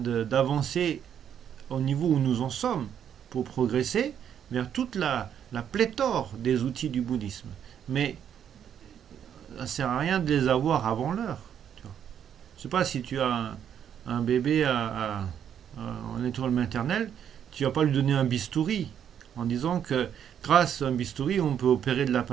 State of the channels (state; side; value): quieter; left; 9.0 dB